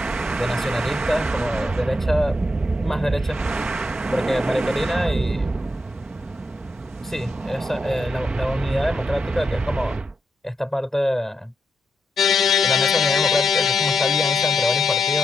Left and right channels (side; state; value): both; normal; correlation 0.83